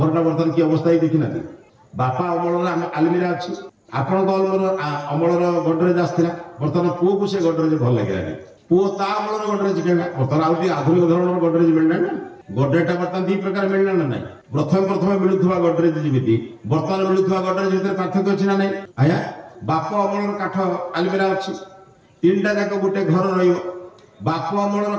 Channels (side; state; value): both; identical; correlation 1.00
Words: बर्तमान की अवस्था ही देखी ना बापा अमल आलमीरा अच्छी आपण अमलर गडरेज आसाला बर्तमान पुओ को से गडरेज भल लगे पुओ ता अमलर गडरेज कहला बर्तमान आउ आधुनिक धरण गडरेज मिलना ना गडरेज बर्तमान दी प्रकार मिलना ना ना प्रथम प्रथम मिलुवा गडरेज जमी बर्तमान मिलुवा गडरेज भितर पार्थक्य अच्छी ना ना आया बाप अमलर काठ आलमीरा अच्छी तीनटा जाक गोटे घर बाप अमलर